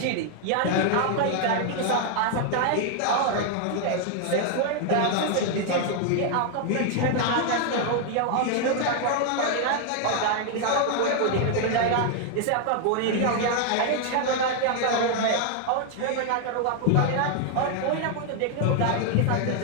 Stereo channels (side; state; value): both; different; correlation 0.00